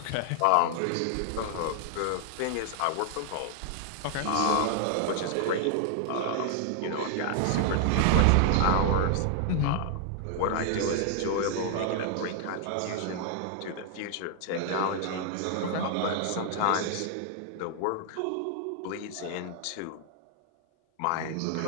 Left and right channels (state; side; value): different; both; correlation 0.00